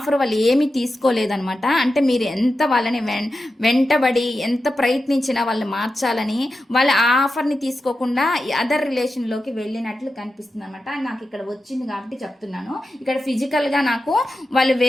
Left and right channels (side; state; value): both; normal; correlation 0.91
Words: వాళ్ళు ఏమీ తీసుకోలేదనమాట. అంటే మీరు ఎంత వాళ్ళని వెంటబడి ఎంత ప్రయత్నించినా వాళ్ళు మార్చాలని వాళ్ళ ఆ ఆఫర్ని తీసుకోకుండా అదర్ రిలేషన్లోకి వెళ్ళినట్లు కనిపిస్తుంది అనమాట. నాకు ఇక్కడ వచ్చింది కాబట్టి చెప్తున్నాను. ఇక్కడ ఫిజికల్గా నాకు వాళ్ళు